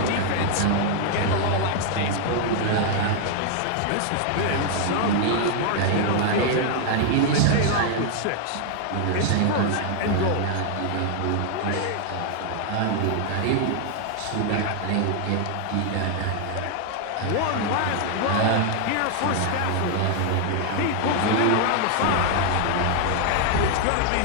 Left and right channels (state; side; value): different; both; correlation 0.00